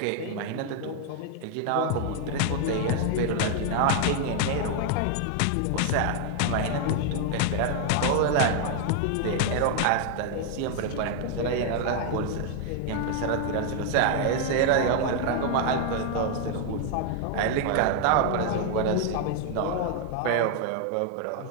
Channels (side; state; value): both; different; correlation 0.00